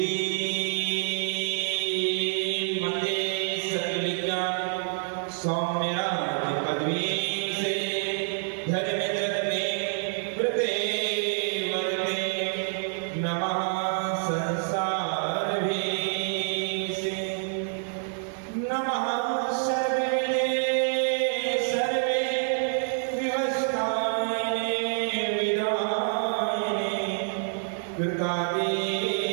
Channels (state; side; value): silent; left; 60 dB below the other